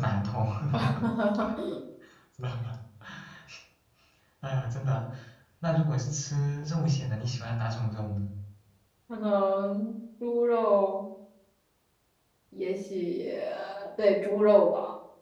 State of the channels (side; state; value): both; identical; correlation 1.00